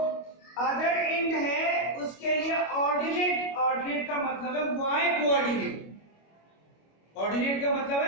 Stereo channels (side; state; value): right; late; 25 ms